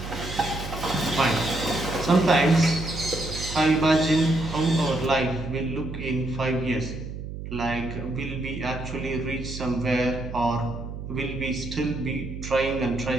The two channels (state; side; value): noise; right; hum, 8 dB below the sound